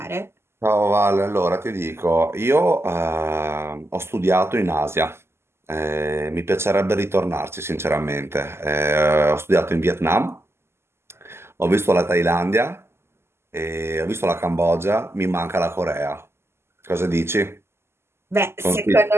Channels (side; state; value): left; late; 0.12 ms